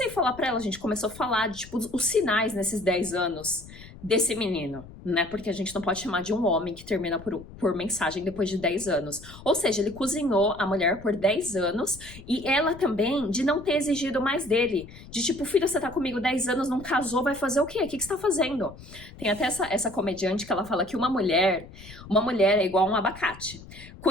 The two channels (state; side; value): noise; left; rumble, 17 dB below the sound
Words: a falar pra ela, a gente começou a falar de, tipo, os sinais nesses 10 anos desse menino, né? Porque a gente não pode chamar de um homem que termina por mensagem depois de 10 anos. Ou seja, ele cozinhou a mulher por 10 anos e ela também de não ter exigido mais dele. De tipo, filho, você tá comigo 10 anos, não casou, vai fazer o quê? O que você tá fazendo? Tem até essa comediante que ela fala que uma mulher é igual a um abacate.